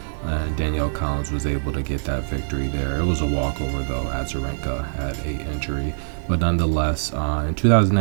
and Danielle Collins was able to get that victory there. It was a walkover, though. Azarenka had an injury, but nonetheless, in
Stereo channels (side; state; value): left; silent; 63 dB below the other